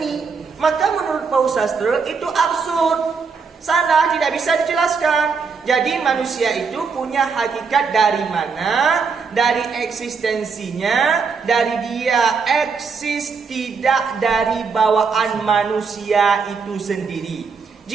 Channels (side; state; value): left; quieter; 5.3 dB